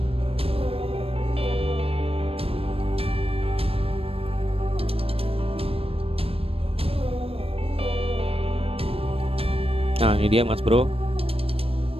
Nah ini dia Mas Bro,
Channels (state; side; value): late; left; 0.28 ms